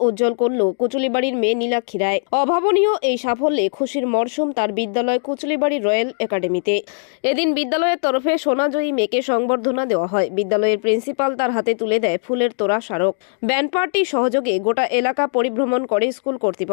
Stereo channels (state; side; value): silent; right; digital silence